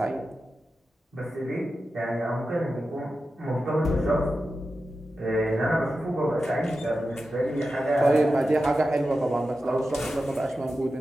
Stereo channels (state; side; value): normal; both; correlation 0.91